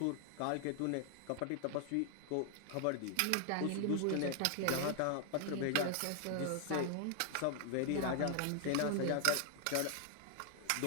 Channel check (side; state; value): both; different; correlation 0.00